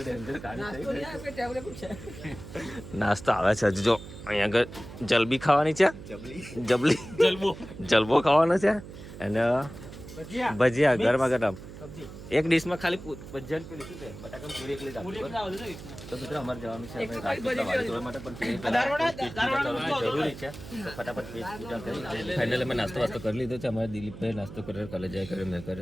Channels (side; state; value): right; noise; hum, 14 dB below the sound